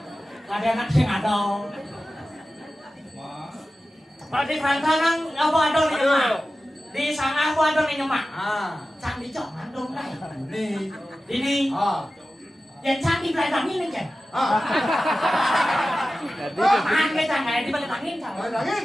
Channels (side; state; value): both; normal; correlation 0.95